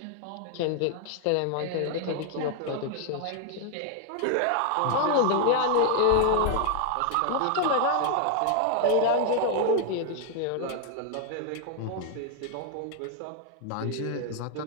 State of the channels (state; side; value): different; both; correlation 0.00